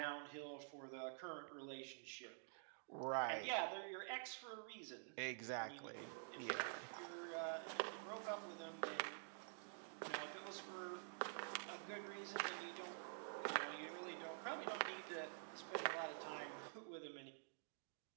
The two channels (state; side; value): silent; left; digital silence